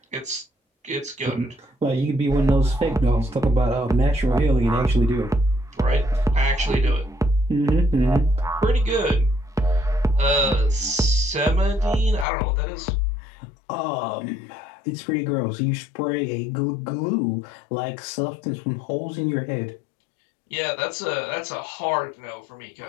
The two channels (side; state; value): right; drops out; at 12.2 s